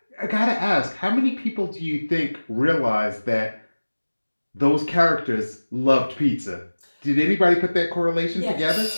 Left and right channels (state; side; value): inverted; both; correlation -1.00